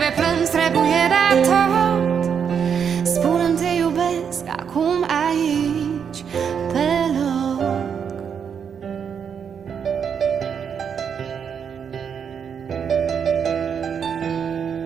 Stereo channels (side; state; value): left; quieter; 7.3 dB